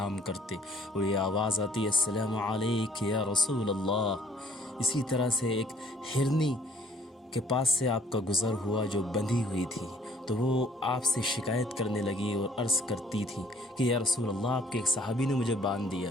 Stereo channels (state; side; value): normal; both; correlation 0.58